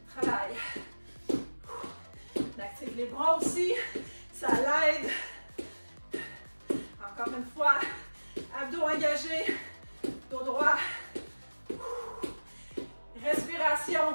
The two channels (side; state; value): both; inverted; correlation -1.00